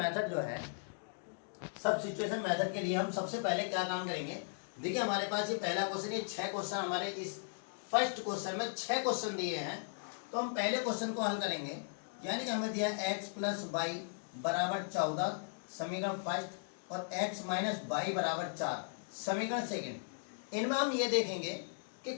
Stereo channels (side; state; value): right; silent; digital silence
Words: जो है, सब सिचुएशन मेथड के लिए हम सबसे पहले क्या काम करेंगे। देखिए हमारे पास ये पहला क्वेश्चन, ये 6 क्वेश्चन हमारे इस फर्स्ट क्वेश्चन में 6 क्वेश्चन दिए हैं। तो हम पहले क्वेश्चन को हल करेंगे, यानी कि हमें दिया x + y = 14 समीकरण फर्स्ट और x - y = 4 समीकरण सेकंड। इनमें हम ये देखेंगे कि